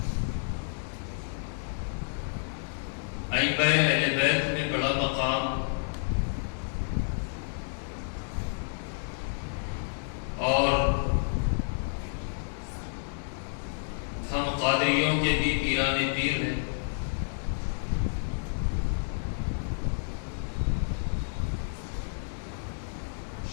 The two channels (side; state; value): right; silent; digital silence